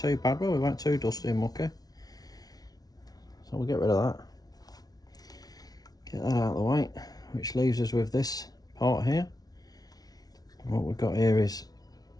bad, well, we weren't too dusty and mucky. So we'll get rid of that. get that out of the way, which leaves us with this part here. And what we've got here is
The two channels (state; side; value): late; right; 0.19 ms